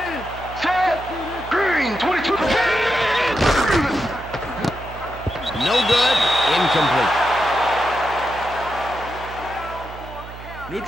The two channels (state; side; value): noise; right; hum, 14 dB below the sound